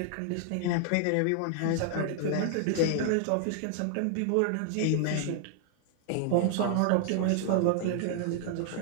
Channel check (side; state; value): both; different; correlation 0.00